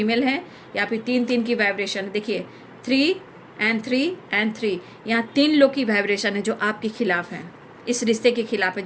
है, या फिर 3 की वाइब्रेशन। देखिए, 3 एंड 3 एंड 3, यहाँ 3 लोग की वाइब्रेशन है जो आपके खिलाफ हैं, इस रिश्ते के खिलाफ है,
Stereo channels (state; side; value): identical; both; correlation 1.00